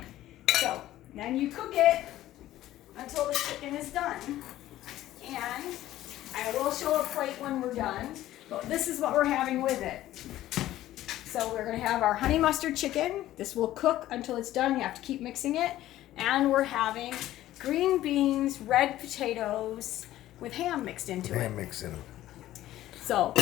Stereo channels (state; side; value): quieter; right; 14.3 dB